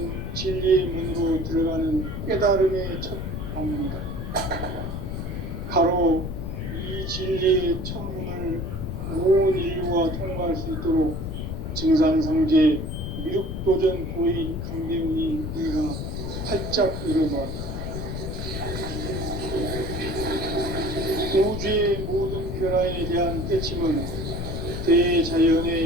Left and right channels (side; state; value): left; noise; rumble, 5 dB below the sound